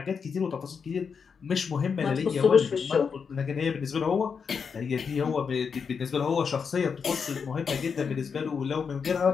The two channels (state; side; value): quieter; right; 6.0 dB